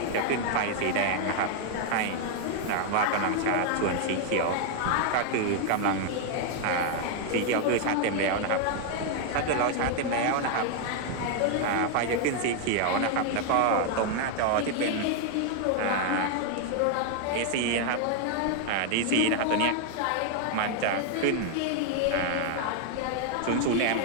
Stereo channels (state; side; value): different; both; correlation 0.00